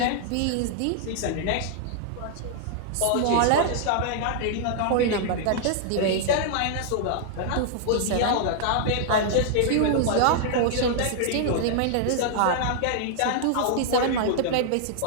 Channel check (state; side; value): different; both; correlation -0.01